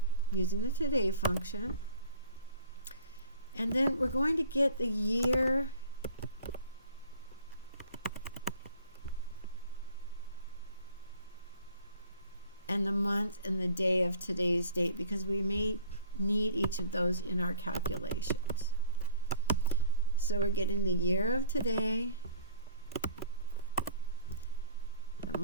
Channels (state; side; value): inverted; both; correlation -0.50